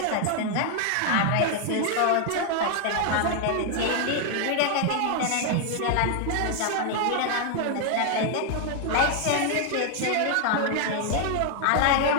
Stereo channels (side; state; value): both; different; correlation 0.00